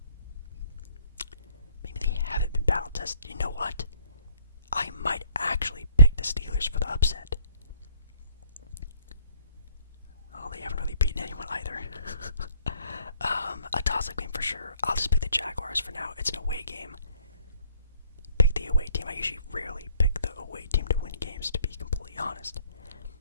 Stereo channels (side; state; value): both; inverted; correlation -0.62